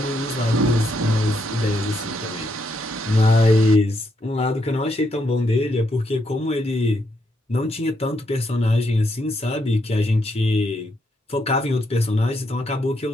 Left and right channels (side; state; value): both; normal; correlation 0.78